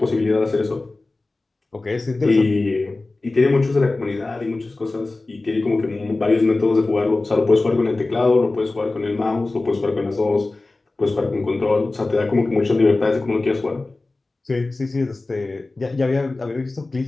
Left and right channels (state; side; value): quieter; right; 3.2 dB